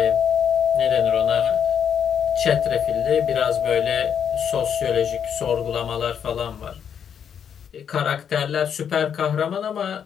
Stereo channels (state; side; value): quieter; right; 8.0 dB